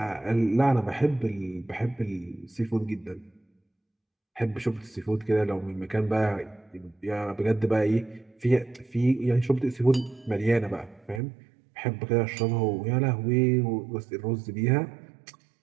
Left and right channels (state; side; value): drops out; left; at 11.2 s